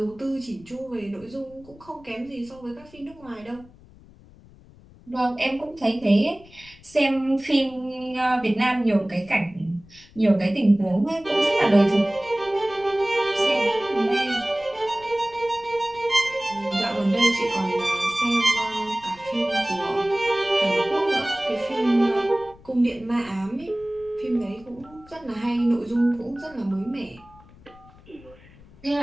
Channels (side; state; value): left; noise; rumble, 24 dB below the sound